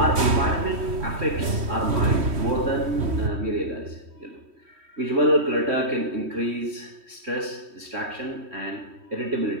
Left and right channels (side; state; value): left; late; 3.1 ms